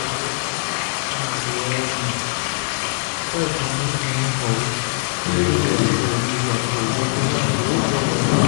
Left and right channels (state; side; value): silent; right; 64 dB below the other